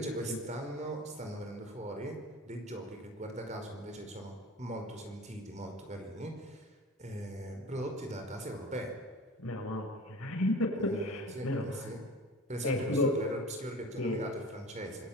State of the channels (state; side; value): normal; both; correlation 0.38